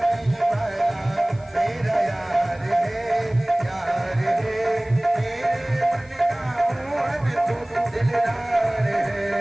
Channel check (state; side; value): noise; left; hiss, 28 dB below the sound